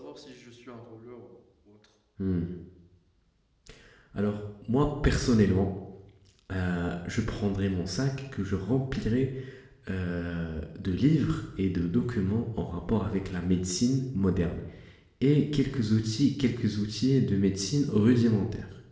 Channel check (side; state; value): both; identical; correlation 1.00